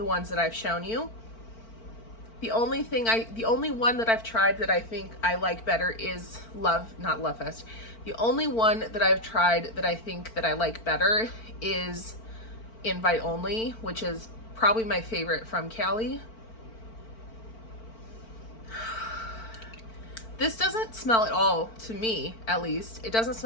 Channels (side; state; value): right; late; 4.4 ms